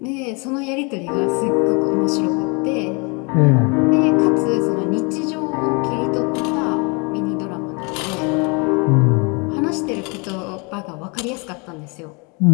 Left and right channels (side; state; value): right; quieter; 31.7 dB